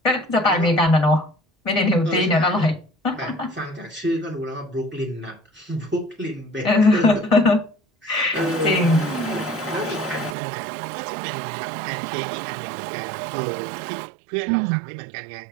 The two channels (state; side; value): drops out; left; at 10.4 s